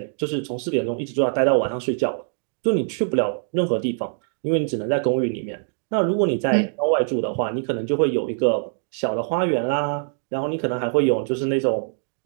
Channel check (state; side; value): silent; left; 63 dB below the other